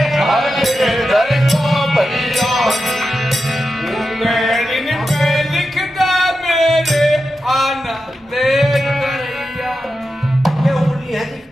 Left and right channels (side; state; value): both; normal; correlation 0.90